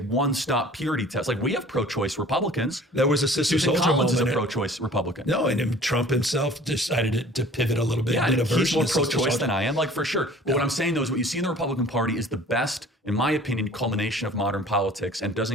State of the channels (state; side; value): normal; both; correlation 0.48